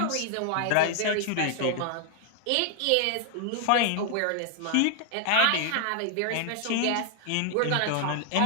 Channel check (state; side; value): different; both; correlation 0.00